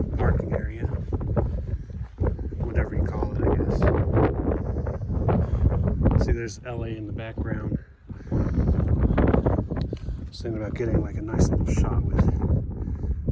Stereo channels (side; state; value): both; identical; correlation 1.00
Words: parking area. Whatever you call it, I guess. See, there's LA in the background. I was thinking about getting like a nice little shot